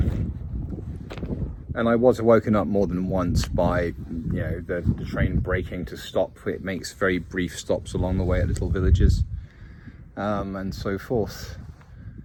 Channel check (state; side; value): identical; both; correlation 1.00